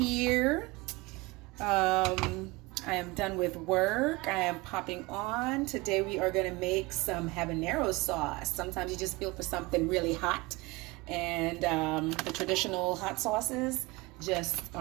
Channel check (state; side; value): quieter; left; 23.0 dB